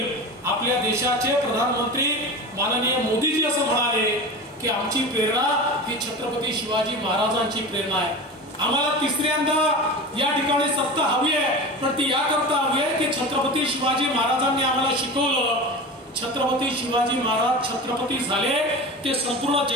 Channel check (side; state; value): both; normal; correlation 0.30